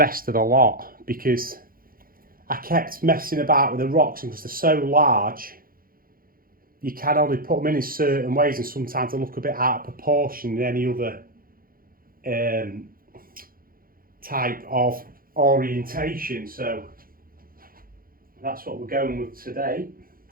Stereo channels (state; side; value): late; left; 0.42 ms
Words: the lot, because I kept messing about with the rocks, and because they're so large, you can only put them in certain ways, and sometimes they look a bit out of proportion in any other type of orientation. So that's what we're going with today.